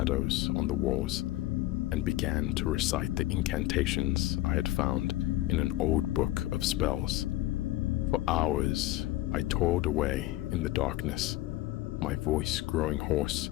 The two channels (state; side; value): quieter; right; 16.5 dB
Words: on the walls, and began to recite the incantations I had found in an old book of spells. For hours, I toiled away in the darkness, my voice growing hoarse